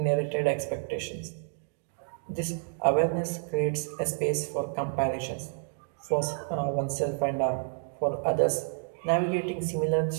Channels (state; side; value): silent; left; 58 dB below the other